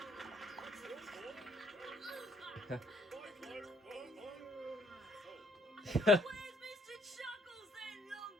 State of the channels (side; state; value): both; normal; correlation 0.65